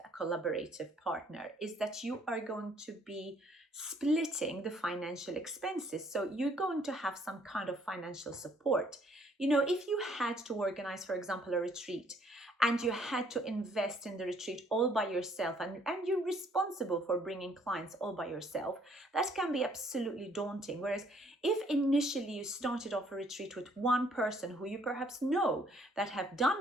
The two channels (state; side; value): normal; both; correlation 0.64